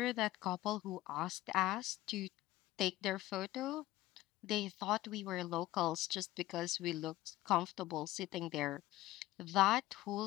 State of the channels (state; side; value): quieter; right; 16.6 dB